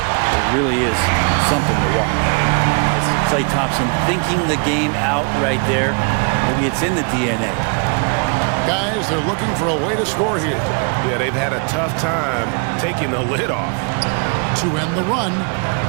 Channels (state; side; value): quieter; left; 37.7 dB